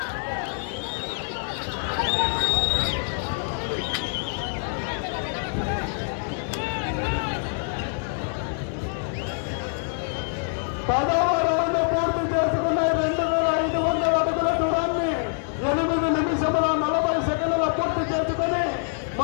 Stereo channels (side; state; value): right; silent; digital silence